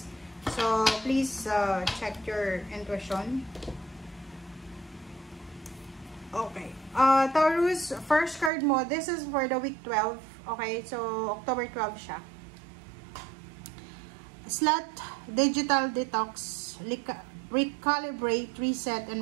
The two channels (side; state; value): left; drops out; at 8.5 s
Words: So, please check your intuition. Okay. Taurus, first card mo, this is for the week 12. Okay, so October 12 siya. Slot, digital detox, recalibrate, reset,